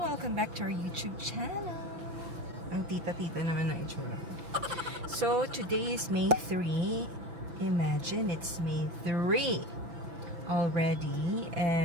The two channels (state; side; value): late; left; 5.9 ms